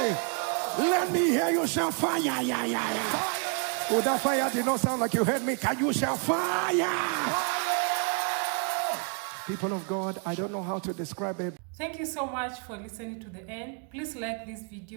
Let me hear you shout fire. Oh, that fire did not sound like you heard me. Can you shout fire? People of God, I don't know how to describe it. Thank you so much for listening to the end. Please like this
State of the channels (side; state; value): left; quieter; 39.0 dB